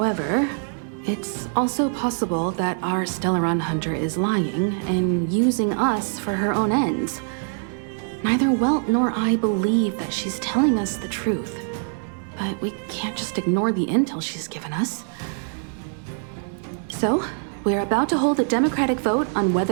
it's also possible that our Stellaron Hunter is lying and using us for her own ends. Neither Welt nor I believe that she's telling us the truth, but we can't just ignore the intel she's given us. So, we're about to hold a democratic vote on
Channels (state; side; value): silent; left; 58 dB below the other